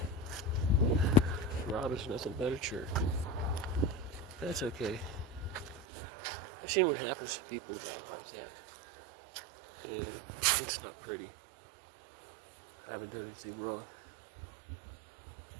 Rob is nothing but a jerk. That's okay. I've seen what happens to people like that. And it's not pretty. I haven't done anything wrong.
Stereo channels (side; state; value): left; drops out; at 5.9 s